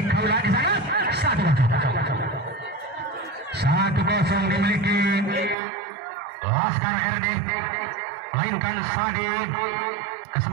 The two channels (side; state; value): left; drops out; at 5.6 s